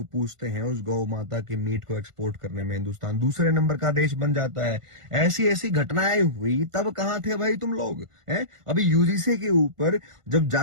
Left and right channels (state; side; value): late; left; 1.5 ms